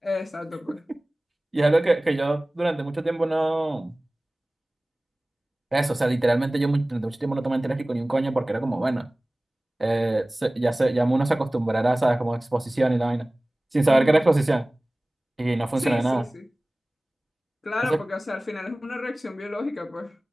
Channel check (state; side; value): normal; both; correlation 0.98